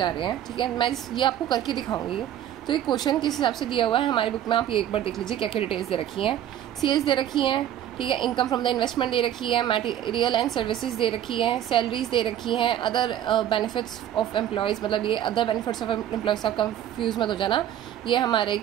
रहे हैं। ठीक है, मैं ये आपको करके दिखाऊंगी। तो ये क्वेश्चन किस हिसाब से दिया हुआ है हमारी बुक में, आप ये एक बार देख लीजिए क्या क्या डिटेल्स दे रखी हैं। सेल्स दे रखी हैं, ठीक है, इनकम फ्रॉम द इन्वेस्टमेंट दे रखी है, मटेरियल एंड सर्विसेज दे रखी हैं, सैलरीज दे रखी हैं, अदर बेनिफिट्स ऑफ एम्प्लॉयज़, मतलब ये अदर बेनिफिट्स ऑफ एम्प्लॉयज़, आप कंफ्यूज मत हो जाना, ये हमारे एक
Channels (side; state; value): left; quieter; 11.2 dB